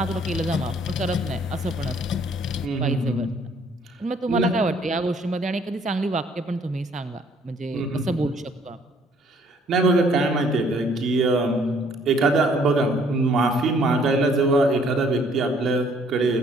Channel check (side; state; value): both; normal; correlation 0.62